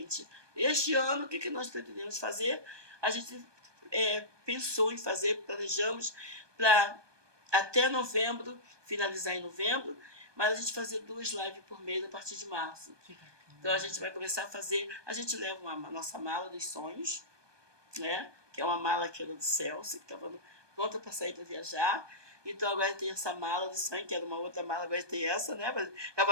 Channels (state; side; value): late; left; 1.2 ms